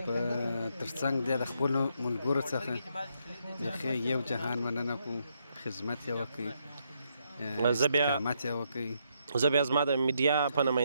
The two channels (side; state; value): both; inverted; correlation -0.77